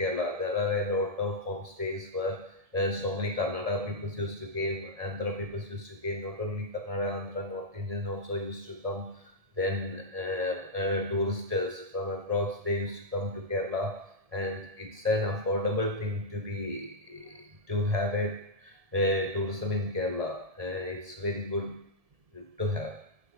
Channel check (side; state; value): left; late; 1.7 ms